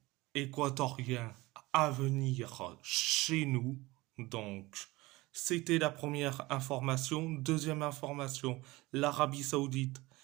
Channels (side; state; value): left; quieter; 20.9 dB